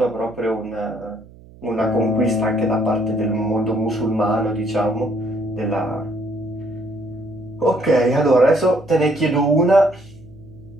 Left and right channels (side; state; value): right; noise; hum, 22 dB below the sound